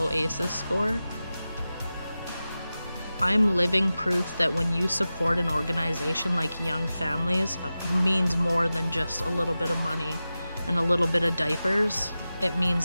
ACEs score. I'm living proof that when you support an organization like Young Families, it means more than just a little bit of money and a little bit of diapers. It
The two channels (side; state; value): both; inverted; correlation -0.95